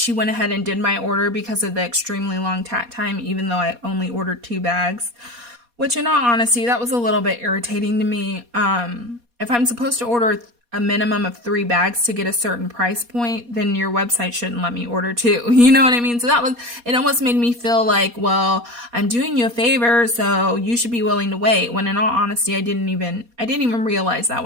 went ahead and did my order because of the extremely long tat time, even though I only ordered 2 bags. Which, in all honesty, that was a little bit irritating to me. If I'm supposed to order a minimum of 3 bags to get a certain price point, then your website shouldn't let me order 2. You know what I mean? So it almost made me feel like, well, I'm doing you a favor, so you should be willing to wait. When in all honesty, I didn't even realize that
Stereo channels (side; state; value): left; late; 4.2 ms